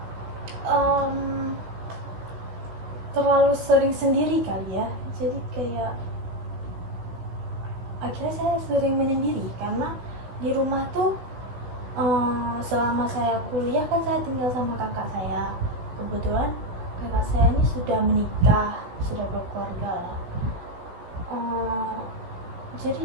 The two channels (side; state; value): left; late; 16 ms